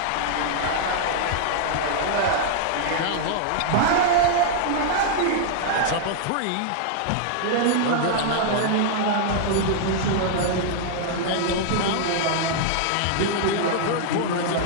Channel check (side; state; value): both; different; correlation -0.01